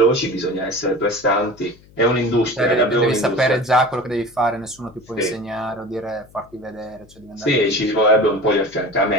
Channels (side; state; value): left; noise; hum, 26 dB below the sound